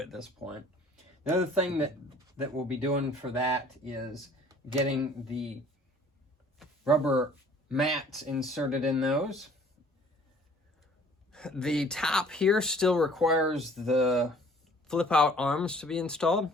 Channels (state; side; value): normal; both; correlation 0.54